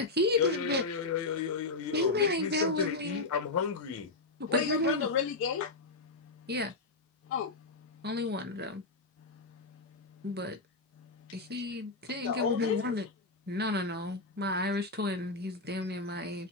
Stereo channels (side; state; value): right; quieter; 3.4 dB